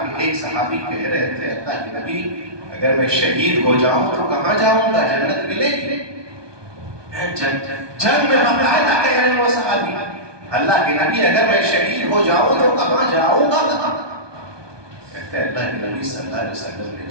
کہ ایک صحابی کہہ رہے تھے اللہ کے نبی اگر میں شہید ہو جاؤں تو کہاں جاؤں گا؟ جنت ملے گی؟ جنگ میں باقاعدہ کہہ رہے ہیں وہ صحابی اللہ کے نبی اگر میں شہید ہو جاؤں تو کہاں جاؤں گا؟ کہتے ہیں اللہ کے نبی صلی اللہ علیہ وسلم نے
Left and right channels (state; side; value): late; left; 1.2 ms